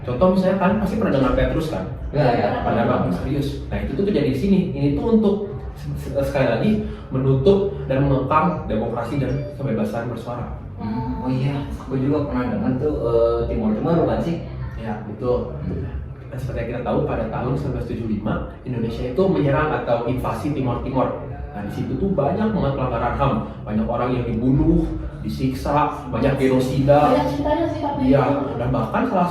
Contoh misalnya kan pasti pernah dengar Petrus kan? Ya. Pada Bang Serius. Nah itu tuh terjadi di sini. Ini tuh untuk sekali lagi menutup dan mengekang demokrasi dan kebebasan bersuara. Oh iya, aku juga pernah dengar tuh Timur Tengah bukan sih? Ya betul. Dan seperti yang kita tahu pada tahun 1975 Indonesia itu menyerang atau invasi Timor Timor. Nah di situ tuh banyak banget pelanggaran HAM, banyak orang yang dibunuh, disiksa, banyak genosida. Banyak ceritanya sih tapi Iya, dan bahkan salah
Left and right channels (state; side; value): identical; both; correlation 1.00